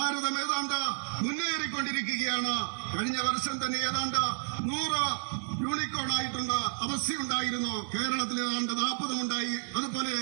ഏതാണ്ട് മുന്നേറിക്കൊണ്ടിരിക്കുകയാണ്. കഴിഞ്ഞ വർഷം തന്നെ ഏതാണ്ട് 100 യൂണിക്കോൺ ആയിട്ടുള്ള അവസ്ഥയുണ്ടായിരുന്നു. കേരളത്തിൽ ഏതാണ്ട് 40 ഉണ്ടായി. അതുപോലെ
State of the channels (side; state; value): left; silent; digital silence